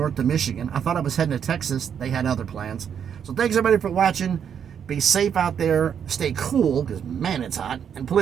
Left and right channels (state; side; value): quieter; left; 8.0 dB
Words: to Michigan. I thought I was heading to Texas. They had other plans. So thanks everybody for watching. Be safe out there. Stay cool because, man, it's hot. And